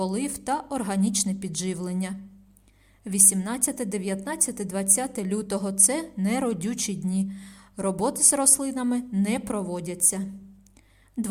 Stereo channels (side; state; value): both; identical; correlation 1.00